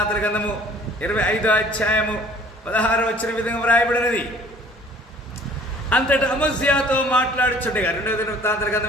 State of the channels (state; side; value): normal; both; correlation 0.52